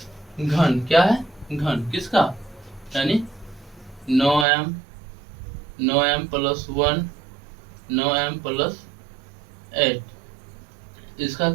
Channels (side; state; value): left; drops out; at 4.5 s